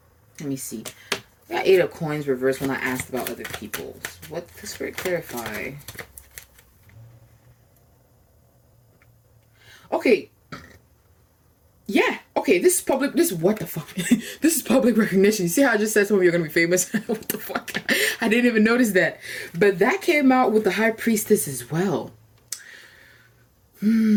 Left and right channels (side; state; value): both; identical; correlation 1.00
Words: me see. I got 8 of coins reversed when I asked about other people. What does Spirit clarify? Okay. Yeah. Okay, this is public. This, what the fuck? This is public recognition. You see how I just said some of you are going to be famous? What the fuck? I didn't even notice that. But that came out with the High Priestess as well. 8